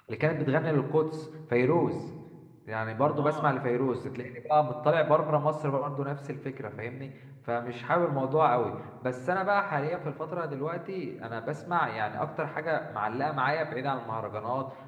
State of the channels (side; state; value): both; identical; correlation 1.00